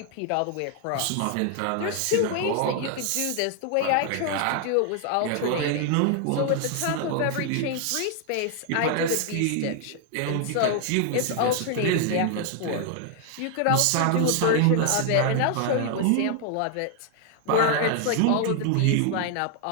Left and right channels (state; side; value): different; both; correlation 0.00